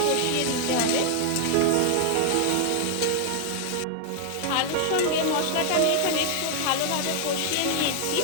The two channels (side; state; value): both; different; correlation 0.00